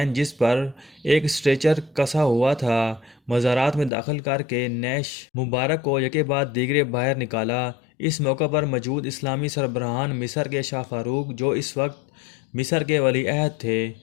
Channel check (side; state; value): right; drops out; at 3.9 s